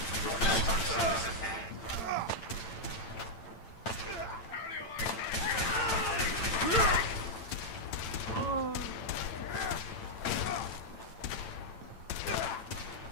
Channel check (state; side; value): late; right; 8.9 ms